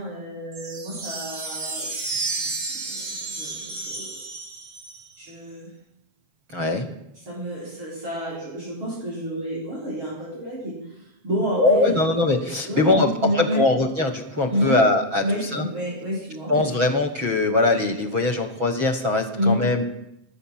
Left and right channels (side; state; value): left; late; 7.5 ms